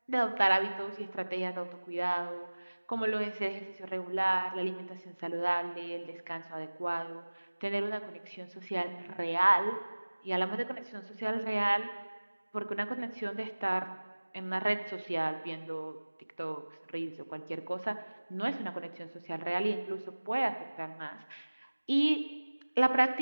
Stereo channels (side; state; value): both; inverted; correlation -1.00